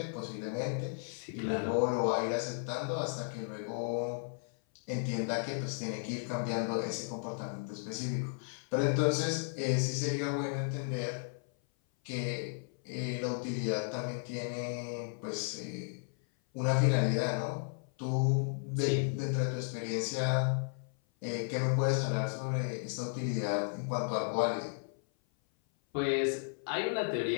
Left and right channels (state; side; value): silent; right; 55 dB below the other